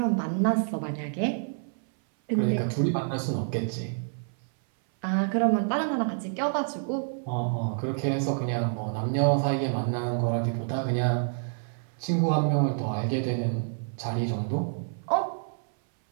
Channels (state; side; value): silent; left; 58 dB below the other